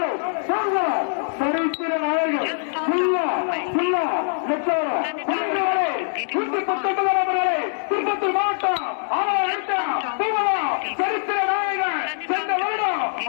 திருப்பத்தூர் மாவட்டம் சரித்திர நாயகன் சென்ற வருடம்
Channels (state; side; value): silent; right; 63 dB below the other